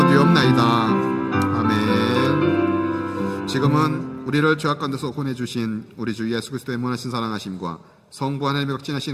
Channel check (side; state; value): both; identical; correlation 1.00